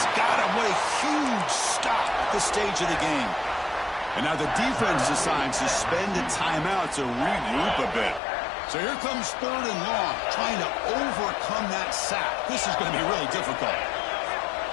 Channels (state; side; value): drops out; right; at 8.2 s